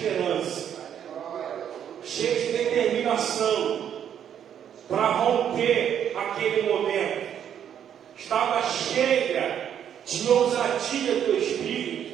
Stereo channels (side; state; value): left; quieter; 9.2 dB